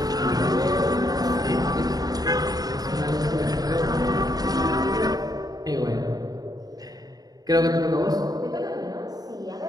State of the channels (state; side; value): late; left; 0.18 ms